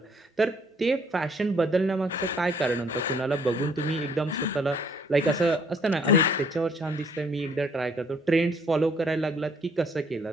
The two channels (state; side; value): normal; both; correlation 0.63